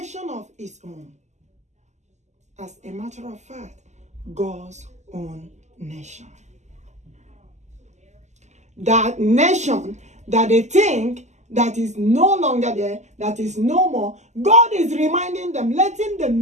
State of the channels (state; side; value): late; left; 0.33 ms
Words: of its own. As a matter of fact, God's own nation. That nation that they think that is no longer there, that is no more, God is reminding them, letting them